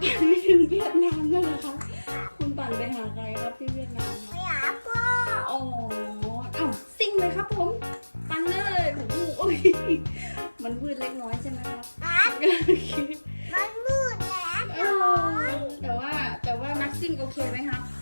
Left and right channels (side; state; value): both; inverted; correlation -1.00